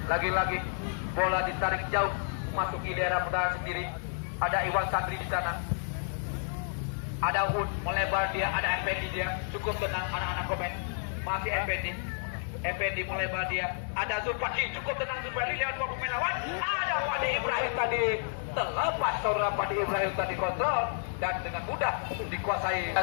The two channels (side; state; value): right; silent; digital silence